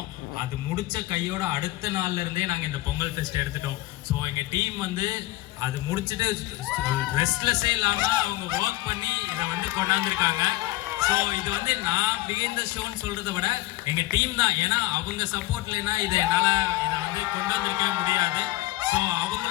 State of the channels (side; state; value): right; quieter; 18.1 dB